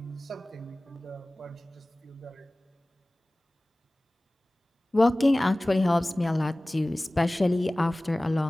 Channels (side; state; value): both; normal; correlation 0.98